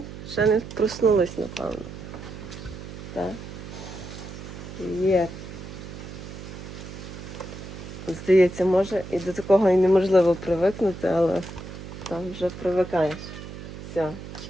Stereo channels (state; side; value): noise; right; hum, 11 dB below the sound